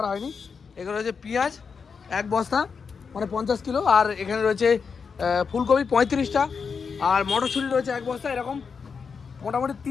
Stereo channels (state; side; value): quieter; right; 5.7 dB